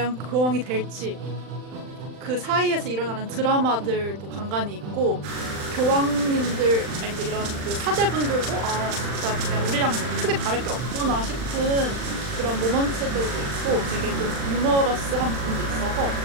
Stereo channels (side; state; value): left; late; 40 ms